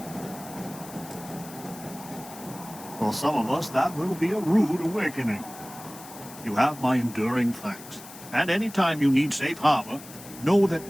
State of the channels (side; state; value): left; noise; hiss, 16 dB below the sound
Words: For some of us, that will be a rude awakening. You have my enduring thanks. And anytime you need safe harbor, know that